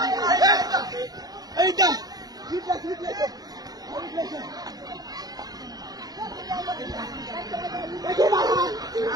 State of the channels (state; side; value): late; left; 0.19 ms